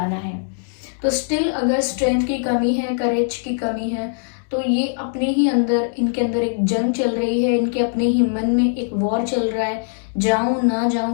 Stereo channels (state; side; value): silent; right; digital silence